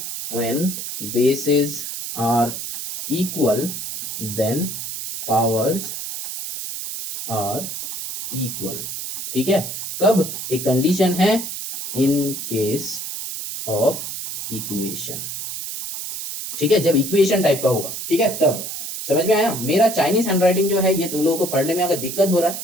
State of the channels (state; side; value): noise; right; hiss, 6 dB below the sound